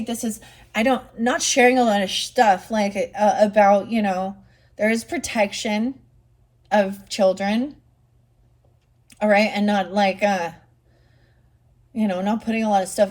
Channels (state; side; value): identical; both; correlation 1.00